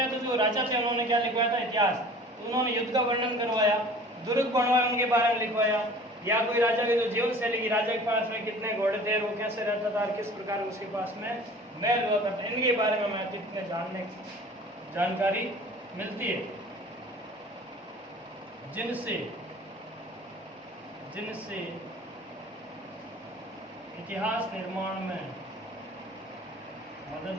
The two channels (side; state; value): both; normal; correlation 0.45